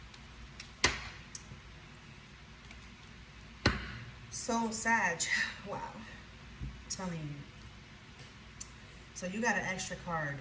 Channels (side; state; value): both; identical; correlation 1.00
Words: So, Sag, wow. I'm telling you. So you got an extra card,